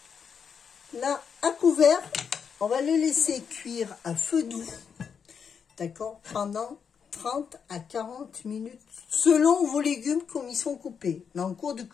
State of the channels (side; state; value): right; quieter; 6.7 dB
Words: Là, à couvert, on va le laisser cuire à feu doux. D'accord? Pendant 30 à 40 minutes, selon vos légumes comme ils sont coupés. Mais en cours de